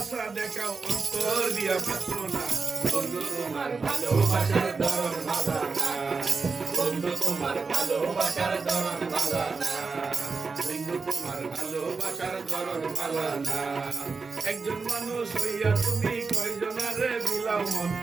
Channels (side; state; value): left; quieter; 4.6 dB